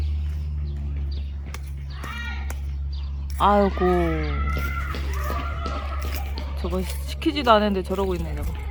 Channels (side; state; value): both; identical; correlation 1.00